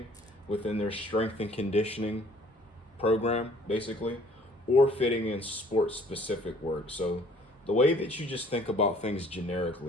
within their strength and conditioning program, basically, or fitting in sport-specific work. So the way that you just think about things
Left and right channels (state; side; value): normal; both; correlation 0.57